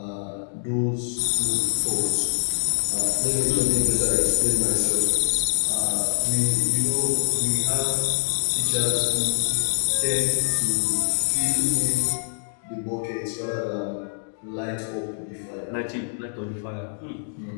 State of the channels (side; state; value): right; silent; digital silence